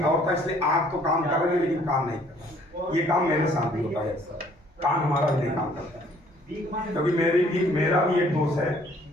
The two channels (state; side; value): normal; both; correlation 0.60